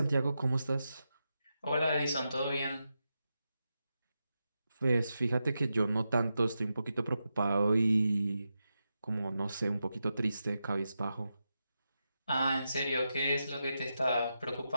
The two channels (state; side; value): inverted; both; correlation -0.88